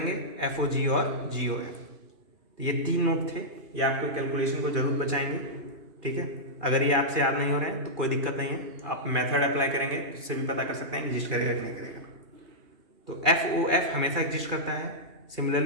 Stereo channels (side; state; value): left; late; 2.4 ms